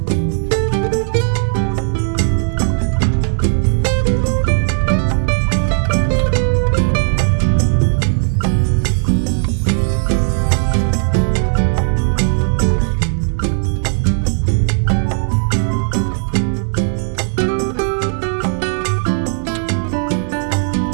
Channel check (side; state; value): left; silent; 69 dB below the other